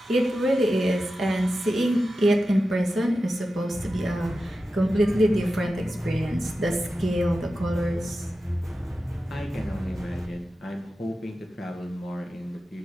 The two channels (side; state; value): both; normal; correlation 0.92